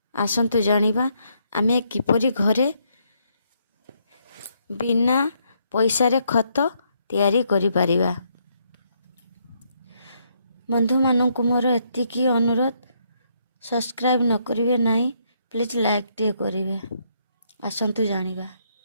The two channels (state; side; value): inverted; both; correlation -0.74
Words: आसतु जानिबा आमे किपरि घरे बिना पैसा रे खत तैयारी करि परिबा। बंधु मानू मोर एतिकी अनुरोध, सब्सक्राइब न करिवे नहीं प्लीज लाइक टे करिवे। आसतु जानिबा